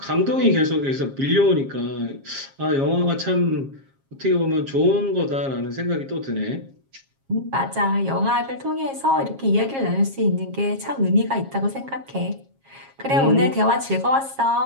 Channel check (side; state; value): left; late; 7.4 ms